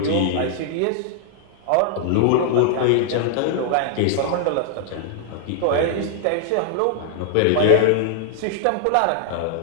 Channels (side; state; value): both; different; correlation -0.01